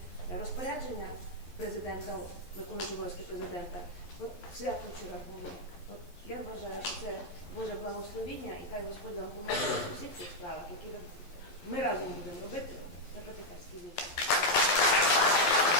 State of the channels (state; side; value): late; right; 11 ms